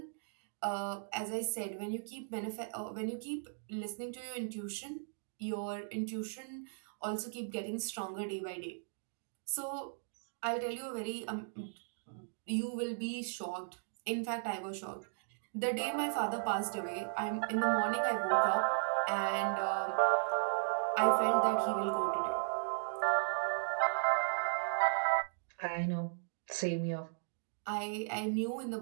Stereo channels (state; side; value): silent; left; digital silence